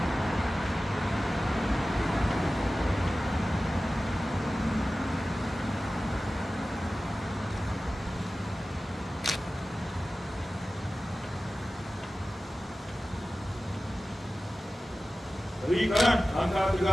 Kiri kanan, langkah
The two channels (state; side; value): normal; both; correlation 0.96